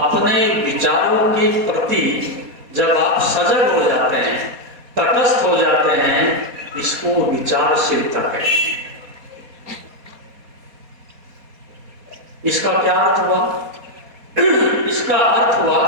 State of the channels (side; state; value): left; late; 4.2 ms